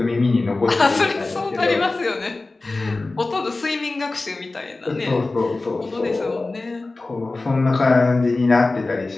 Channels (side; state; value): right; quieter; 3.3 dB